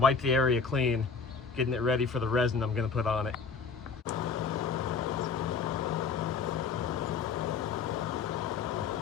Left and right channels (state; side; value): quieter; right; 5.3 dB